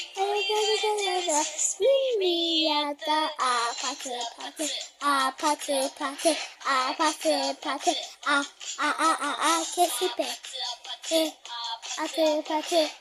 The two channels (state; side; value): identical; both; correlation 1.00